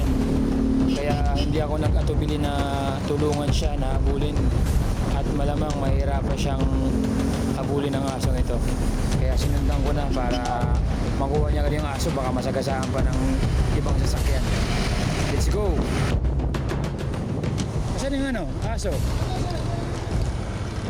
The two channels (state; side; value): identical; both; correlation 1.00